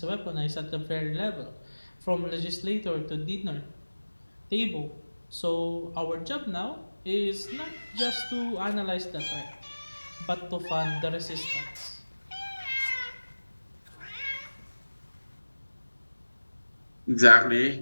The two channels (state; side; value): inverted; both; correlation -1.00